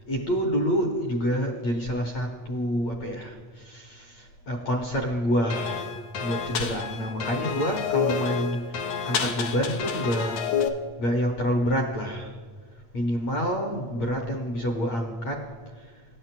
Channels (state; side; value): late; right; 8.6 ms